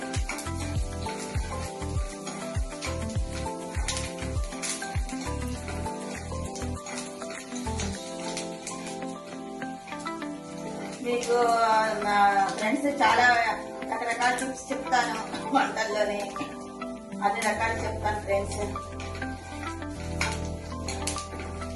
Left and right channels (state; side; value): identical; both; correlation 1.00